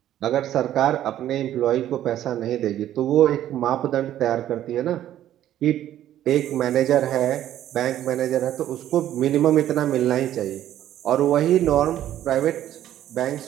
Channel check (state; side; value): quieter; left; 12.1 dB